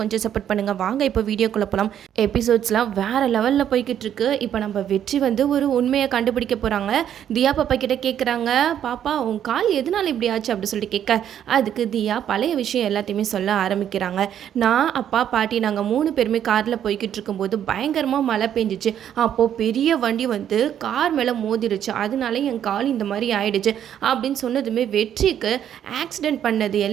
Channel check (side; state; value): left; quieter; 9.9 dB